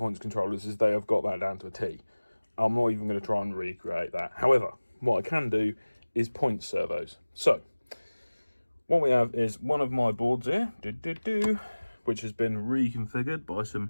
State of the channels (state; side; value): inverted; both; correlation -1.00